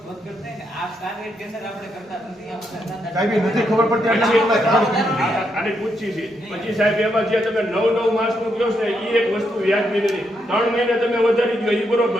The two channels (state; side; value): normal; both; correlation 0.79